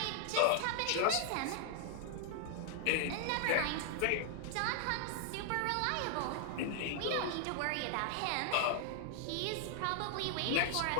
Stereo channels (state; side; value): different; both; correlation -0.01